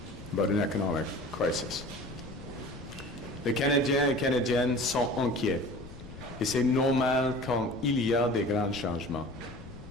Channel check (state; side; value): noise; left; rumble, 15 dB below the sound